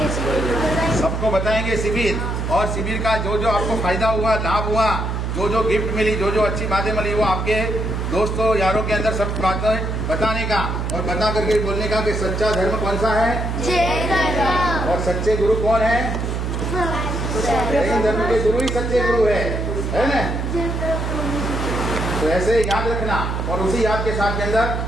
सबको बताएंगे शिविर, और शिविर का जो जो आपको फायदा हुआ, लाभ हुआ, जो जो गिफ्ट मिली, जो जो अच्छी बातें मिली, वो आपके दोस्तों यारों के अंदर सब बातें बताने का और बता करके बोलने का कि सच्चा धर्म कौन सा है, और सच्चे गुरु कौन है. जैन धर्म के गुरु ही सच्चे गुरु है ना. तो ऐसे याद रखना और उसी याद के साथ के अंदर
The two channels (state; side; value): noise; right; hum, 2 dB below the sound